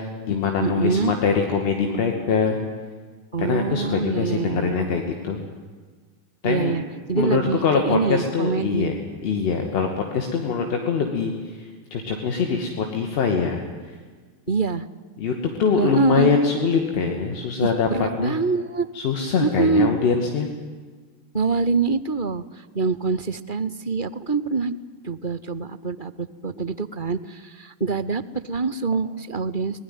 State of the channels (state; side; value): late; right; 2.4 ms